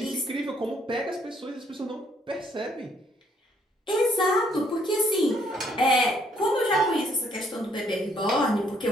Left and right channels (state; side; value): normal; both; correlation 0.67